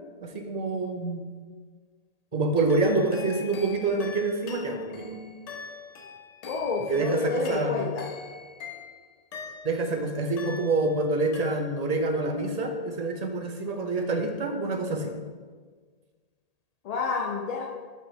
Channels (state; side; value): late; right; 1.8 ms